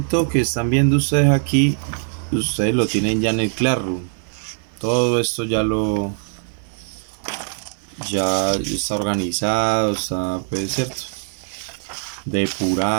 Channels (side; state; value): left; silent; digital silence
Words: que están viendo ustedes aquí, ustedes lo tienen ya en el Classroom. Todo esto ya está organizado, está, pues, cierto,